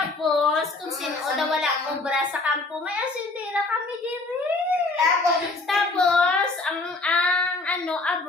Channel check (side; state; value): right; quieter; 3.3 dB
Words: kung sinuda wala obra sa kampo, may asindera kami diri. Tapos, ang